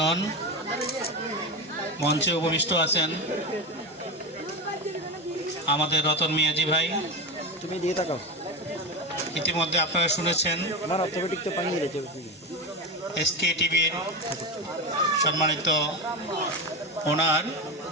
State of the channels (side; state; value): both; normal; correlation 0.19